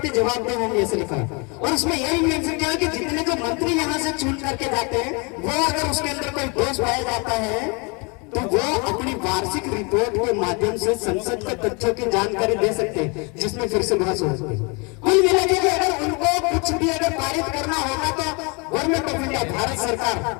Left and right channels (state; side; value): quieter; right; 31.2 dB